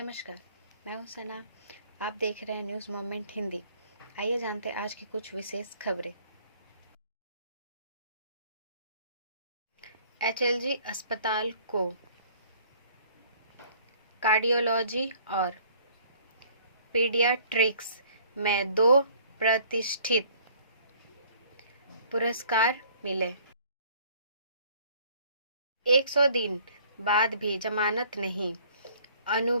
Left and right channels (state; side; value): inverted; both; correlation -0.57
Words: नमस्कार, मैं हूं सना। आप देख रहे हैं न्यूज़ मोमेंट हिंदी। आइए जानते हैं आज की कुछ विशेष खबरें। एचएलजी अस्पताल को कार्डियोलॉजी और पीडियाट्रिक्स में 2 प्रतिष्ठित पुरस्कार मिले। 100 दिन बाद भी जमानत नहीं,